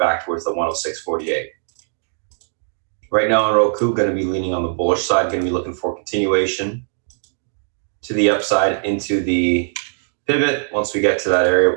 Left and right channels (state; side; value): silent; left; digital silence